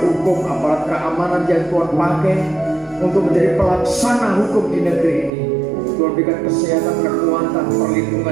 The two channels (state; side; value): drops out; left; at 5.3 s